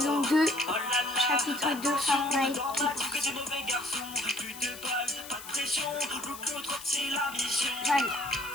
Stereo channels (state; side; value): noise; left; hiss, 14 dB below the sound